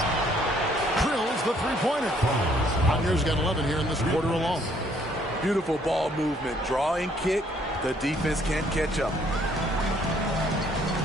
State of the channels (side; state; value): both; normal; correlation 0.65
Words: Drills the three-pointer. Wagner's got 11 here in this quarter alone. Beautiful ball movement. Draw and kick. The defense can't catch up.